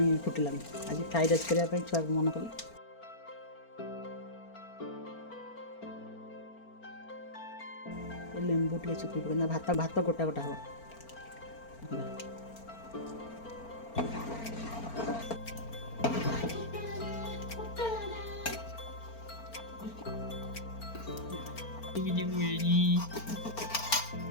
फुटिला आज फ्राइड राइस करने छुआ मन कले लेंबू टे चुपी पकईना भात भात गोटा गोटा हम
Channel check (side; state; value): right; late; 4.4 ms